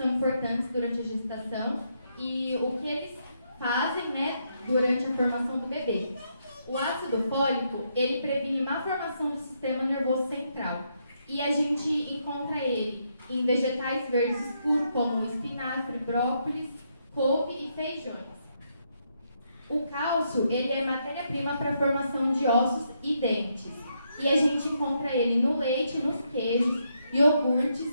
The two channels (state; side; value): inverted; both; correlation -0.77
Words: importantes durante a gestação e o que eles fazem, né, durante a formação do bebê. O ácido fólico, ele previne má formação do sistema nervoso central. E a gente encontra ele em vegetais verdes escuros, como espinafre, brócolis, couve e feijões. O cálcio, ele é matéria-prima para a formação de ossos e dentes. E a gente encontra ele no leite, nos queijos,